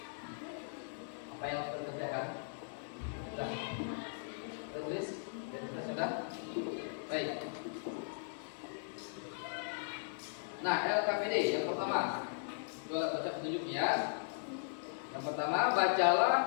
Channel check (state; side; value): silent; right; digital silence